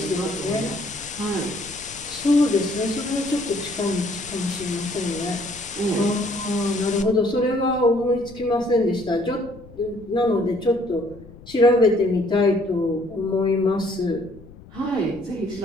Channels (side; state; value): left; noise; rumble, 20 dB below the sound